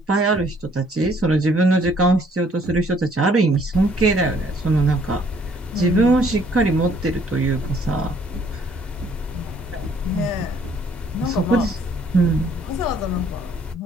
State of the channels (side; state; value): both; normal; correlation 0.63